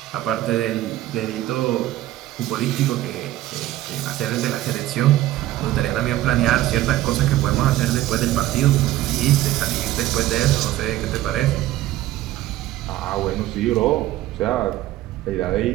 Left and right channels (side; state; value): left; quieter; 14.9 dB